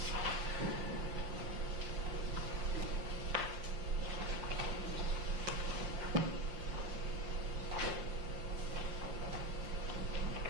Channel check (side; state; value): left; late; 5.7 ms